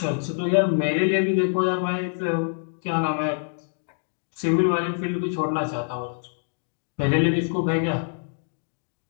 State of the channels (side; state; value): right; silent; digital silence